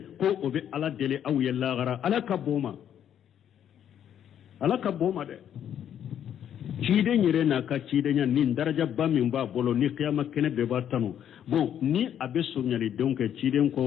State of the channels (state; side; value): quieter; right; 9.7 dB